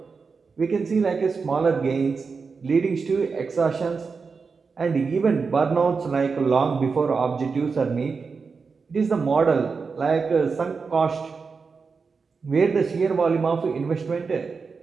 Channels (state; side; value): quieter; left; 5.0 dB